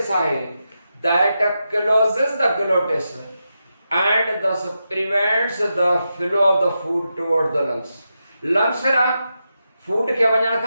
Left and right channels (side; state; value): both; inverted; correlation -0.88